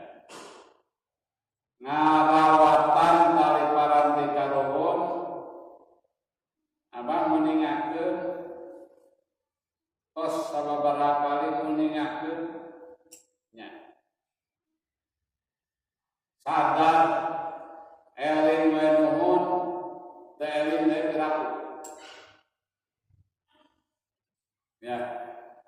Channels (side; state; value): both; identical; correlation 1.00